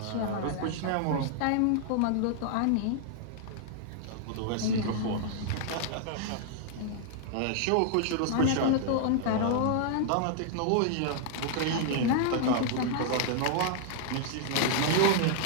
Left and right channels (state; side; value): different; both; correlation 0.00